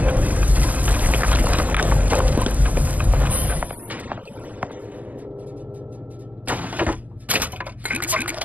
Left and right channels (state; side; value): late; left; 0.076 ms